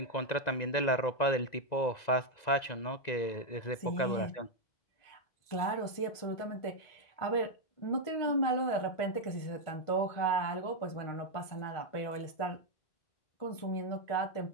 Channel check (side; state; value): right; late; 1.9 ms